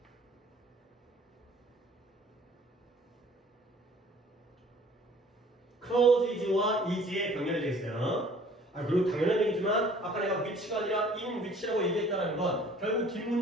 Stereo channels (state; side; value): normal; both; correlation 0.53